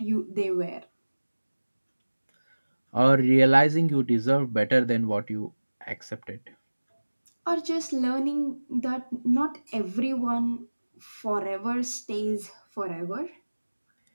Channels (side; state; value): both; inverted; correlation -1.00